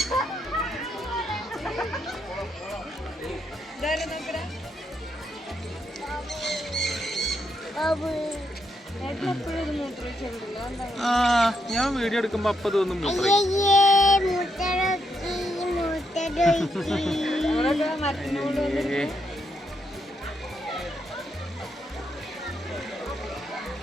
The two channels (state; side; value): normal; both; correlation 0.79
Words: ഞാൻ വീഡിയോ എടുക്കുമ്പോ അപ്പൊ തോന്നും